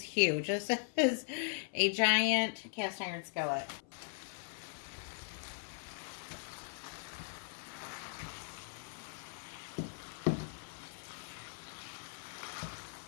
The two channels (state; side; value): silent; right; 52 dB below the other